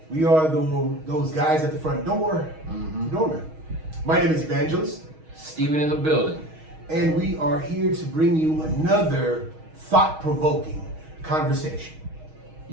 We are those guys at the front door, The Doorman. My name is Evangelist, Steven in the building. and we are here to bring you another thought-provoking conversation.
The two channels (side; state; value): left; late; 6.3 ms